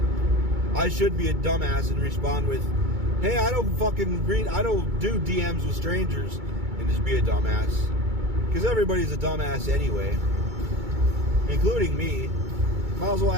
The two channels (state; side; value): late; left; 2.2 ms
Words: I should be a dumbass and respond with, hey, I don't do DMs with strangers, and just be a dumbass. Because everybody's a dumbass anyway. Including me. Might as well